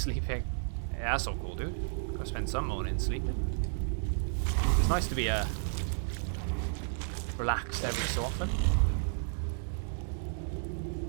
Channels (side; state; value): left; silent; digital silence